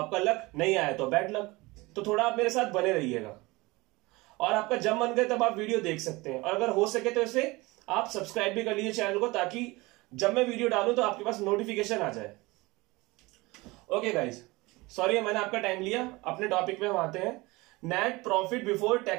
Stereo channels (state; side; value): quieter; left; 22.6 dB